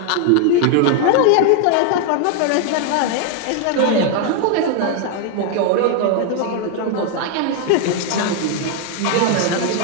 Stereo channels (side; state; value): both; different; correlation 0.00